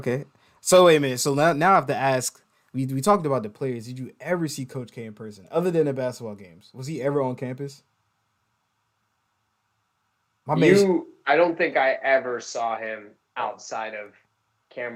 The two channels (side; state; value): both; identical; correlation 1.00